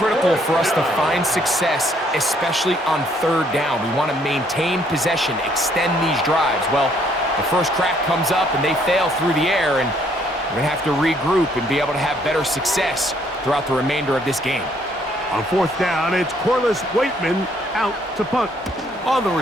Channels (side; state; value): both; normal; correlation 0.66